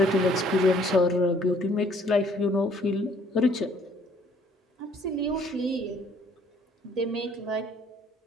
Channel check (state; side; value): normal; both; correlation 0.61